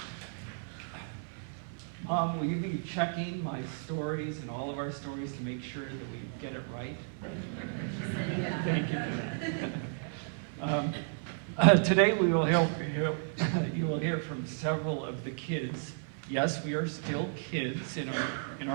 Mom, will you be checking my stories and all of our stories to make sure that we get it right? Thank you for that. Today we will you will hear from several of the kids. Yes, we are still kids in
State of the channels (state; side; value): silent; left; 56 dB below the other